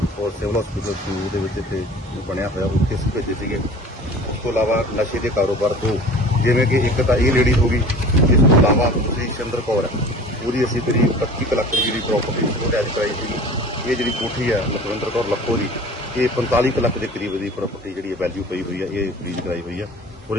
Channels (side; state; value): both; normal; correlation 0.42